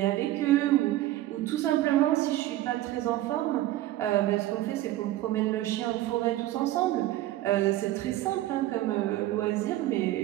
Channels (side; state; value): left; quieter; 15.1 dB